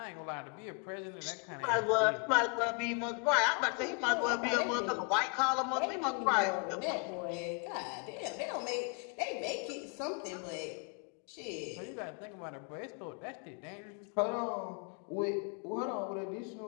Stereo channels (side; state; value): right; quieter; 36.3 dB